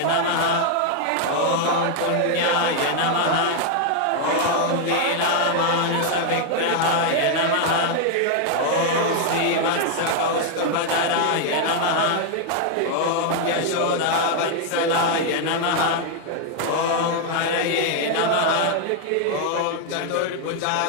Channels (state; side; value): different; both; correlation 0.00